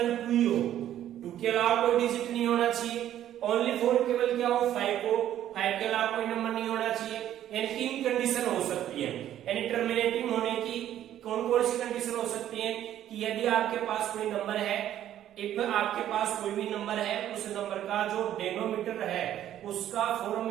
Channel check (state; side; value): quieter; left; 11.7 dB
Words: 2 ही हो, 2 के अलावा कोई डिजिट नहीं होना चाहिए, ओनली 4 केवल क्या हो 5 हो, 5 के अलावा कोई नंबर नहीं होना चाहिए। यानी 3 कंडीशन हो सकती है, यानी टर्मिनेटिंग होने की कौन कौन सी कंडीशन हो सकती है कि यदि आपके पास कोई नंबर है, एक आपके पास कोई भी नंबर है, उस नंबर का जो डेनोमीटर है उसका फॉर्म